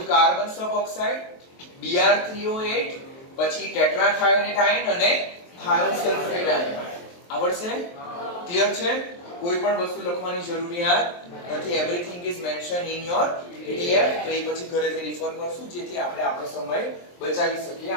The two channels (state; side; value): late; right; 23 ms